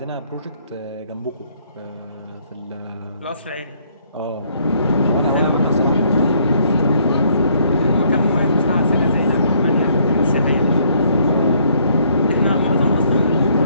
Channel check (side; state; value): both; inverted; correlation -0.66